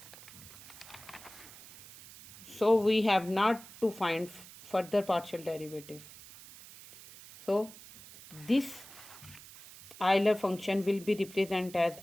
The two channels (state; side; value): noise; right; hiss, 18 dB below the sound